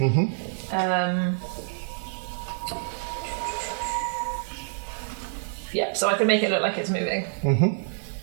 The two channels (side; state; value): left; silent; digital silence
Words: Yeah, so I can make it look like it's moving.